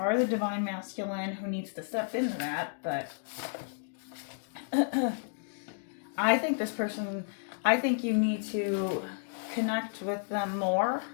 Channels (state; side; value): silent; right; digital silence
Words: the divine masculine who needs to step into that. But I think this person, I think you need to connect with them more.